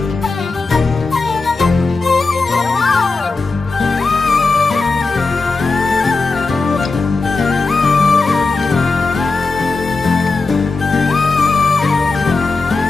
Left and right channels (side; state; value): right; quieter; 3.9 dB